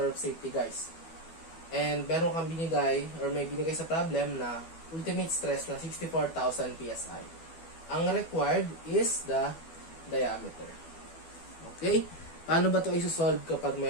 of safety, guys. And meron kang binigay, or may binigay sa problem na ultimate stress na 64,000 psi. Ang required is the diameter. Okay? Paano ba ito isosolve kapag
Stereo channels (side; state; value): right; late; 12 ms